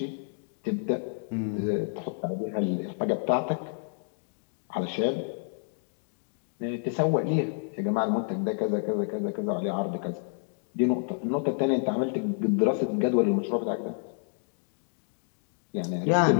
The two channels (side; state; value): right; silent; digital silence